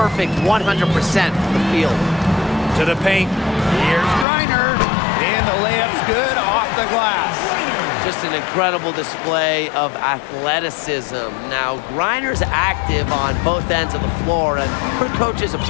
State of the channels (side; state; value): right; drops out; at 4.2 s